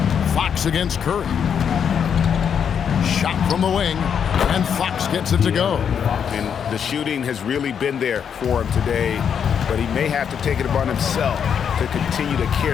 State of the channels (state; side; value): quieter; right; 7.7 dB